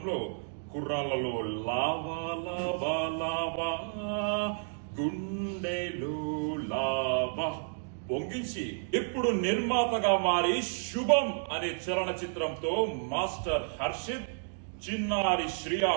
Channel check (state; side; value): silent; left; digital silence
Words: కుర్రాళ్లలో లావా లావా లావా గుండెలో లావా పొంగించి ఇప్పుడు నిర్మాతగా మారి శుభం అనే చలనచిత్రంతో మాస్టర్ హర్షిత్, చిన్నారి శ్రియా